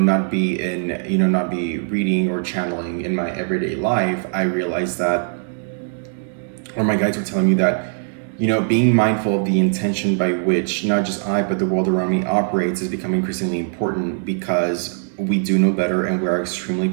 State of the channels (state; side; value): silent; left; digital silence